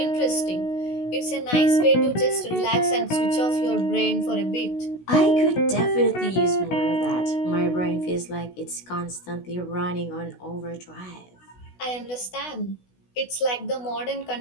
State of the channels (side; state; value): right; late; 16 ms